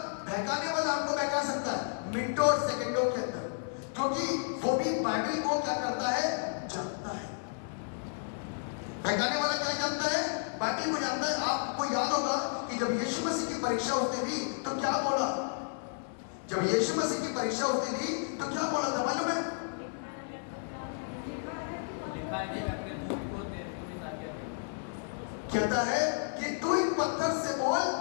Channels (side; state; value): right; silent; 56 dB below the other